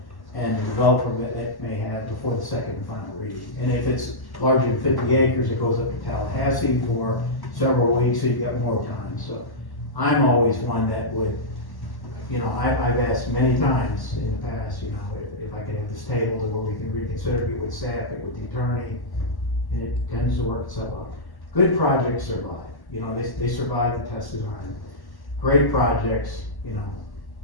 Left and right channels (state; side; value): late; right; 1.1 ms